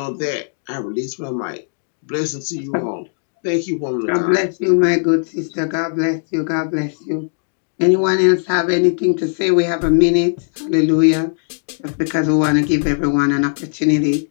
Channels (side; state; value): right; silent; digital silence